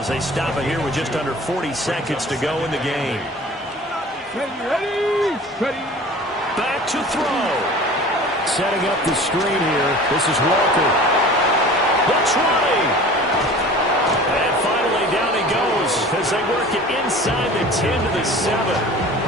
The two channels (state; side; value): normal; both; correlation 0.42